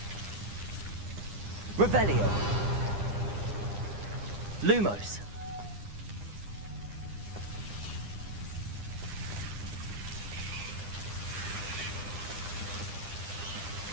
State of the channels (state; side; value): late; left; 9.9 ms